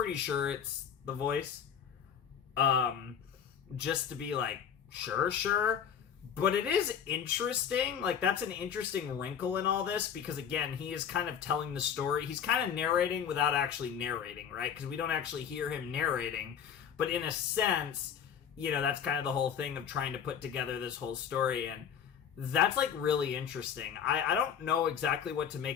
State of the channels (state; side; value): quieter; right; 8.2 dB